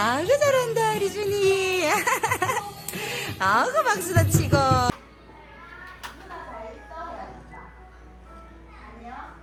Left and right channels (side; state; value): both; identical; correlation 1.00